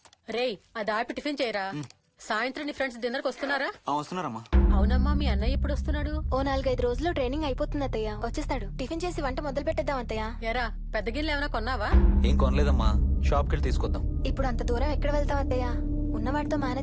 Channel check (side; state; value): both; identical; correlation 1.00